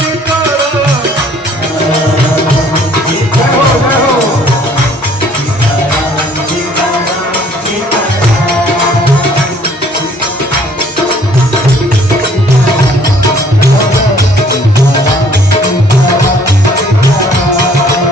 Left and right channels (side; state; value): both; normal; correlation 0.58